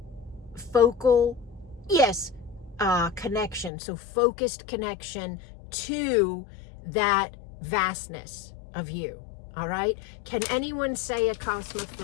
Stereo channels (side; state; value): right; drops out; at 3.7 s